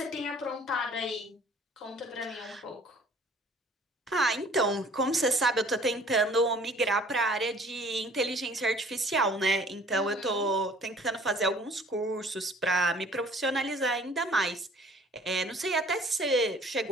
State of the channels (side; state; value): both; normal; correlation 0.53